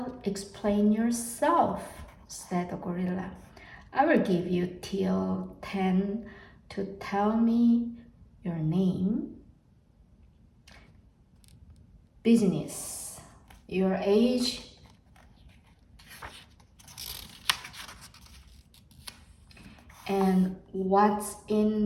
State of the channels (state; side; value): identical; both; correlation 1.00